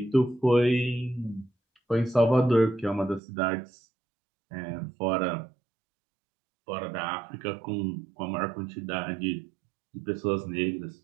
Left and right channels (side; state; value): left; drops out; at 3.2 s